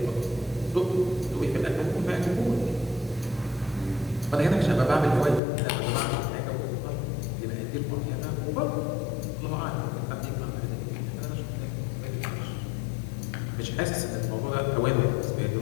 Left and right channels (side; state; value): right; drops out; at 5.4 s